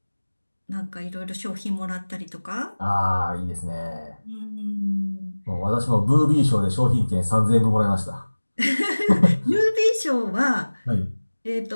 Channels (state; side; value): inverted; both; correlation -1.00